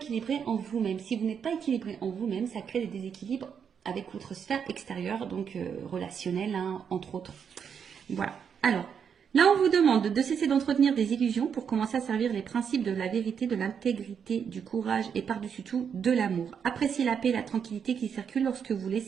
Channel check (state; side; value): quieter; left; 7.3 dB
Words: en vous-même. Si vous n'êtes pas équilibré en vous-même, ça crée des déséquilibres avec votre sphère extérieure, donc relationnelle, hein, entre autres. Voilà. Alors, là, on vous demande de cesser d'entretenir des illusions pour commencer à servir les principes de la vérité, de l'intégrité, du courage et par-dessus tout, de l'amour. Appréciez la paix et la tranquillité qui circulent lorsque vous